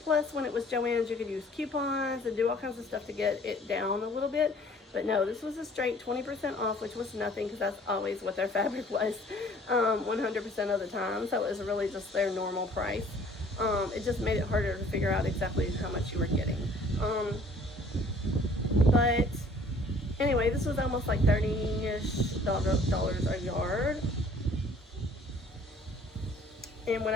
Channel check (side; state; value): both; normal; correlation 0.55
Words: Plus, when it was JoAnn's, you could use coupons and do all kinds of stuff to get it down a little bit. But no, this was a straight 20% off, which was nothing because that's always what their fabric was 100% of the time. So it was really just their normal price. It just made it harder to figure out exactly how much you were getting. But anyway, this was almost like $30-ish a yard. And